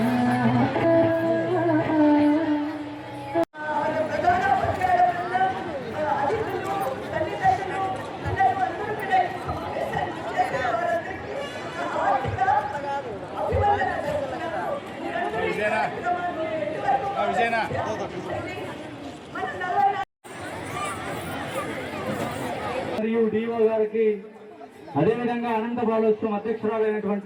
మరియు డిఓ గారికి, అదేవిధంగా అనంత బాలోత్సవం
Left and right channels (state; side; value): identical; both; correlation 1.00